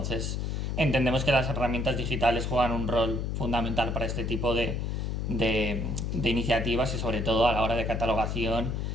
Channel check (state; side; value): noise; left; hum, 1 dB below the sound